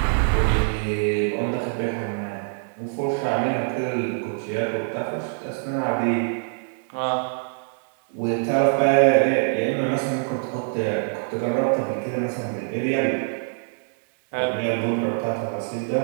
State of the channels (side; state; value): left; silent; 62 dB below the other